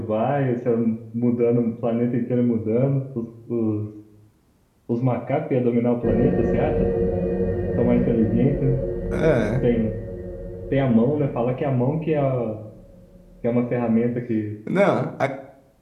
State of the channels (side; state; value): both; identical; correlation 1.00